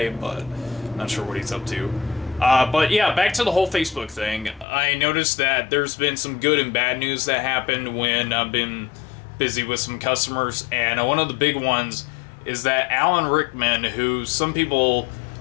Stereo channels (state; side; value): drops out; right; at 4.7 s